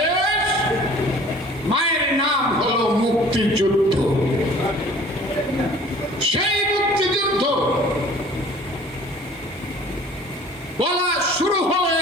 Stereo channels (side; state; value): both; normal; correlation 0.49